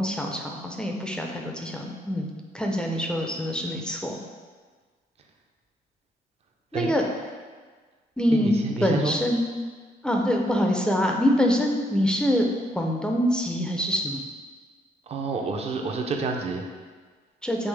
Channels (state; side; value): normal; both; correlation 0.74